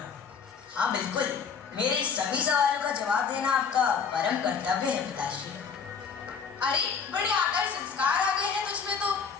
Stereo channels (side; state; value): right; quieter; 6.1 dB